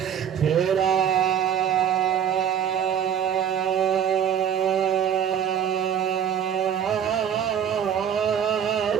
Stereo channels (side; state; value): left; quieter; 8.8 dB